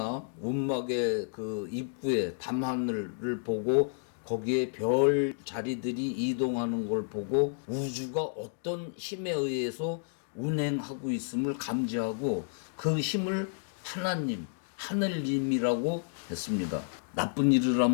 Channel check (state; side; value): silent; right; digital silence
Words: 운막의 그 입구에 밤하늘을 보고 거기에 별 자리들이 이동하는 걸 보고 우주가 어떤 힘에 의해서 운행하고 있음을 감지하고 그 힘을 하나님, 하늘님이라고 했습니다. 나쁜 일을